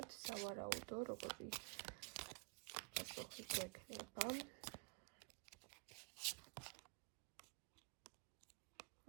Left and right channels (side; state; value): left; quieter; 32.1 dB